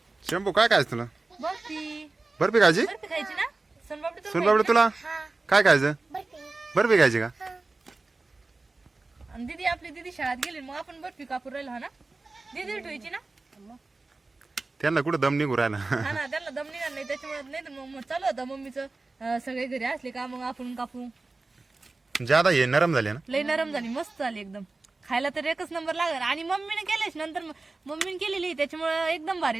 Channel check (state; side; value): quieter; left; 3.5 dB